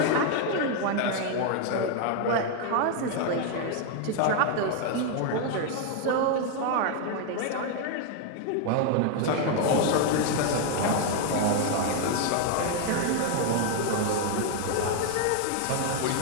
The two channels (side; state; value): both; different; correlation 0.01